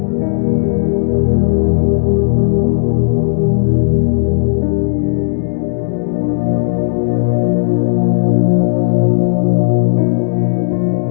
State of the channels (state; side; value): silent; right; digital silence